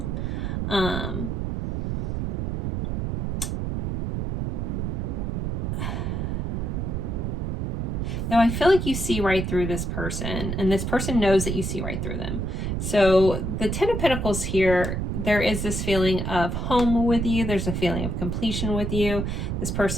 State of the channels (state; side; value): noise; right; rumble, 1 dB below the sound